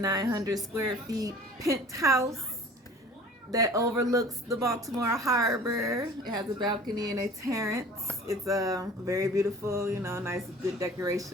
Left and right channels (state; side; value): normal; both; correlation 0.46